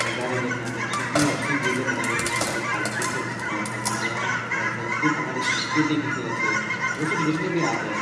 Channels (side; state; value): both; identical; correlation 1.00